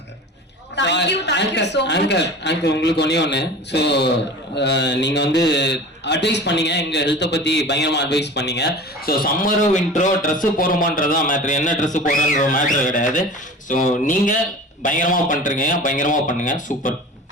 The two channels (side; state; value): both; normal; correlation 0.37